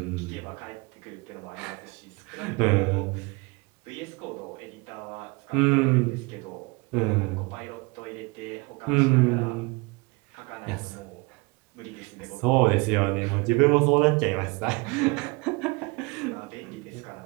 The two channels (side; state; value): left; quieter; 27.6 dB